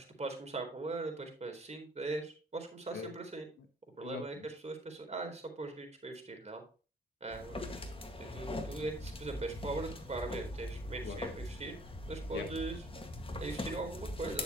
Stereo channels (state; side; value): normal; both; correlation 0.57